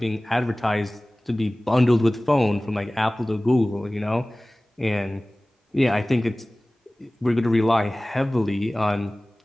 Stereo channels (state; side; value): normal; both; correlation 0.98